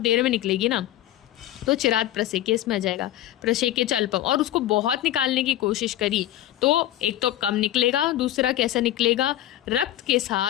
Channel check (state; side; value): quieter; right; 13.8 dB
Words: में निकलेगी ना, तो चिराग प्रसेके इसमें आ जाएगा। प्रसेके चल्पम, और उसको बहुत निकालने की कोशिश करी तो एक तो कम निकलेगा, दूसरा कैसा निकलेगा, रक्त के